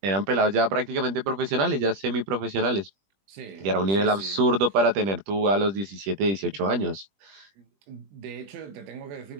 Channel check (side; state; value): left; late; 20 ms